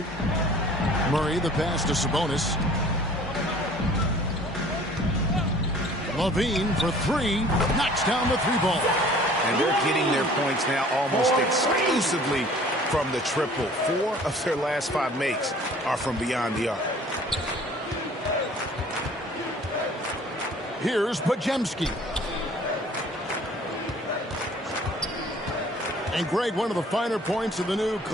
Murray, the pass to Sabonis. Levine for three. Knocks down the three ball. And they're getting their points now almost exclusively from the triple. 4 of their last 5 makes are from beyond the arc. Here's Podziemski. And Greg, one of the finer points of the new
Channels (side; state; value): both; normal; correlation 0.51